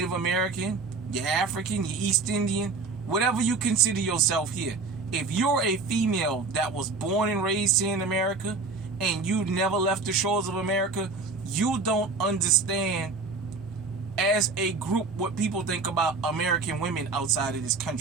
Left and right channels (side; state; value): left; quieter; 4.1 dB